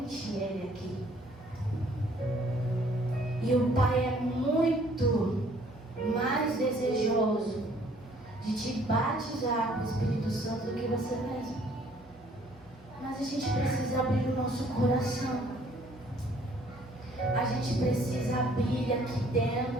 ele aqui. E o Pai é muito mais desejoso de te batizar com o Espírito Santo do que você mesmo. Mas a gente precisa abrir o nosso coração. A gente precisa abrir aqui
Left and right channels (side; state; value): both; normal; correlation 0.60